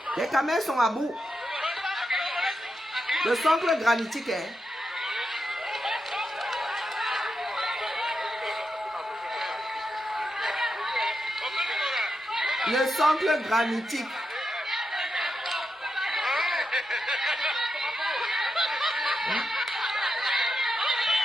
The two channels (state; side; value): normal; both; correlation 0.86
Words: Les caméras sont à bout. Le socle granitique est... Le socle granitique.